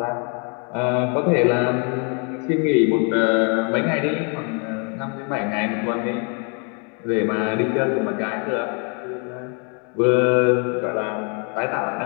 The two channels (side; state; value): right; quieter; 37.0 dB